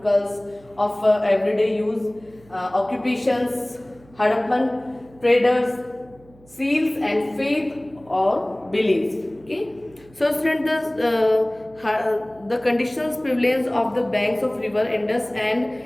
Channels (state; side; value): noise; right; hum, 26 dB below the sound